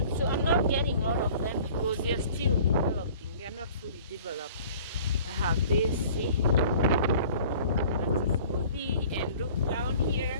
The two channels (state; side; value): inverted; both; correlation -0.48